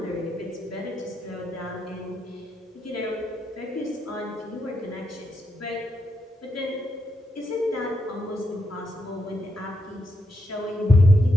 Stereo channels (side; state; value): both; normal; correlation 0.82